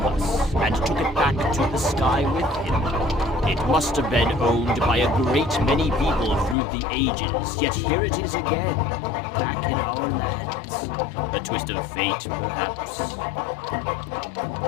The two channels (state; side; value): drops out; right; at 6.6 s